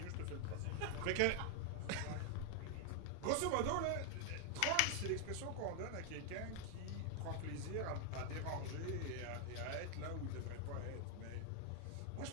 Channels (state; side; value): different; both; correlation 0.00